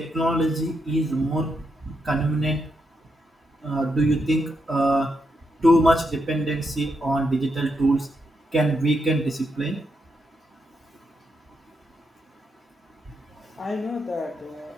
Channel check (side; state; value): both; normal; correlation 0.82